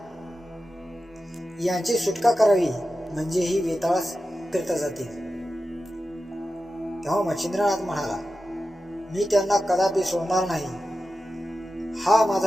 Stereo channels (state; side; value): normal; both; correlation 0.92